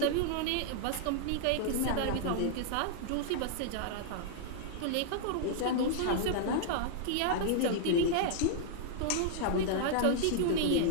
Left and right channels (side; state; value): both; different; correlation -0.01